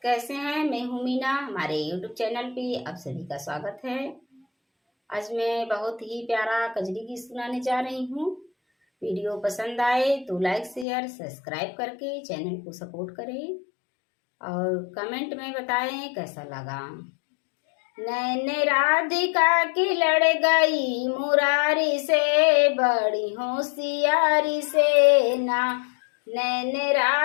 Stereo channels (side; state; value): right; drops out; at 10.9 s